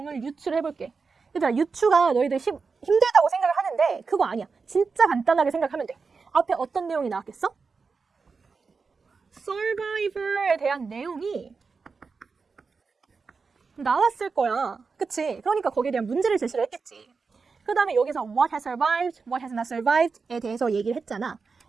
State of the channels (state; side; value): quieter; left; 4.8 dB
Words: 유추해볼게. 얘들아, 유추가 너희들 힘들다고 생각을 하는데 그거 아니야. 진짜 간단하게 생각하면 돼. 앞에 어떤 내용이 나왔겠어? Survivor에 대한 내용이 나왔을 거야. 그치? 그러니까 거기에 대한 문제를 제시를 했겠지. 그 다음에 여기서 what has survived, what has not survived에 대해서 얘기를 했잖아.